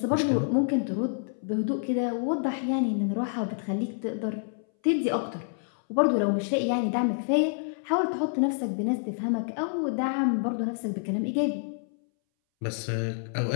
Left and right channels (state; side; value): silent; right; 59 dB below the other